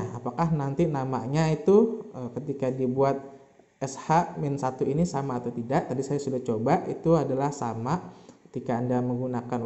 Apakah nanti namanya itu ketika dibuat SH-1 ini sama atau tidak? Tadi saya sudah coba, itu adalah sama ketika Anda menggunakan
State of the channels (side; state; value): both; identical; correlation 1.00